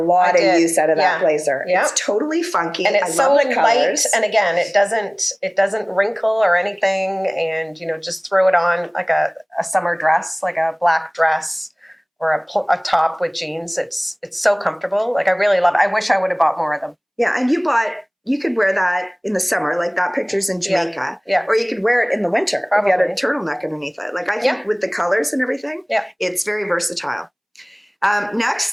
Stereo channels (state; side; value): identical; both; correlation 1.00